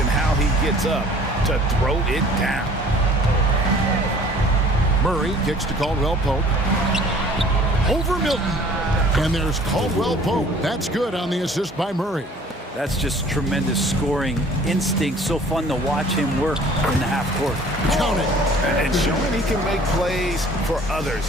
how he gets up to throw it down. Murray kicks to Caldwell Pope. Over Milton. And there's Caldwell Pope. That's good on the assist by Murray. That's just tremendous scoring instinct. So fun to watch him work in the half court. Count it. And showing he can make plays for others.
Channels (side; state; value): both; normal; correlation 0.51